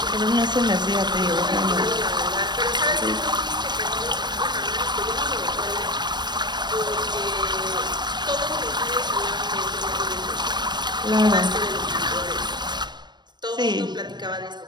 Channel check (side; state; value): left; late; 0.21 ms